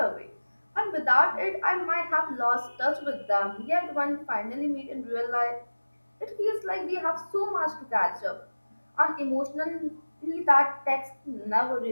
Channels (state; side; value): inverted; both; correlation -1.00